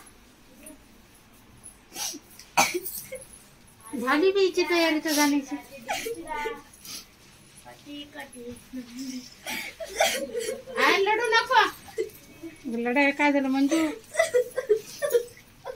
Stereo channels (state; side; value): identical; both; correlation 1.00